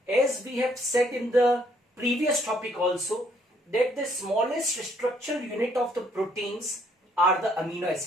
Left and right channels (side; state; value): both; normal; correlation 0.67